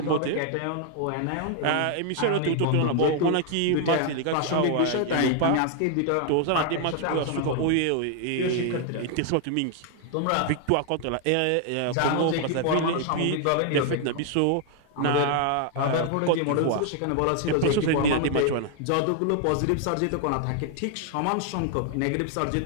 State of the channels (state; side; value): different; both; correlation 0.00